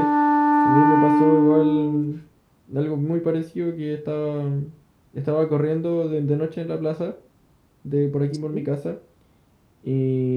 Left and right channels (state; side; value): identical; both; correlation 1.00